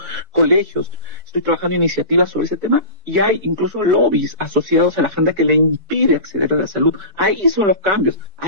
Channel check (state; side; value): late; left; 4.6 ms